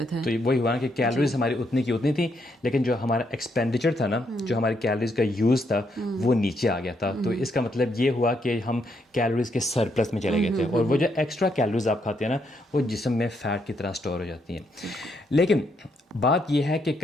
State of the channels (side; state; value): both; normal; correlation 0.76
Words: تھے. تو وہی ہوا نا کہ کیلوریز ہماری اتنی کی اتنی تھی, لیکن جو ہمارا ایکسپینڈیچر تھا نا, جو ہماری کیلوریز کا یوز تھا وہ نیچے آ گیا تھا. تو اس کا مطلب یہ ہوا کہ ہم کیلوریز کے سرپلس میں چلے گئے تھے, اور وہ جو ایکسٹرا کیلوریز آپ کھاتے ہیں نا وہ جسم میں فیٹ کی طرح اسٹور ہو جاتی ہیں. لیکن بات یہ ہے کہ